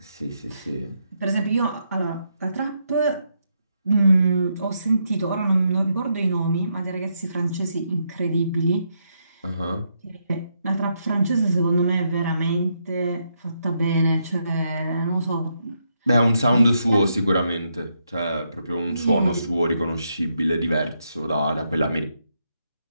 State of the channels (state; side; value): inverted; both; correlation -0.79